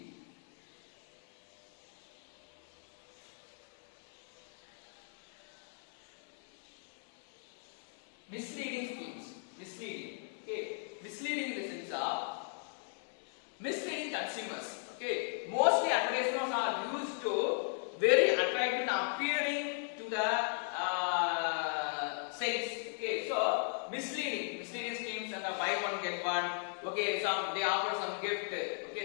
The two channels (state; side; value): silent; right; 53 dB below the other